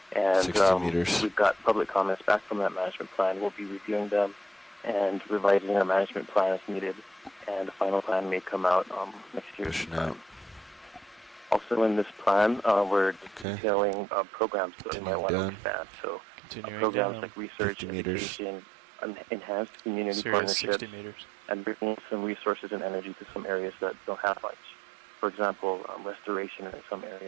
And 60 meters. we've got public comments back from that management plan. We'll be reviewing them and revising our management plan as needed. And the final plan may come out next year Pushing sometime. Also in this plan, we're detailing programs that we might want to expand. So programs down. like research, 50 meters. education, enhanced community Series partnerships, 60 meters. and bringing some resources and energy to some areas that don't have much. For example, restoration in some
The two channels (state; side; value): drops out; left; at 13.5 s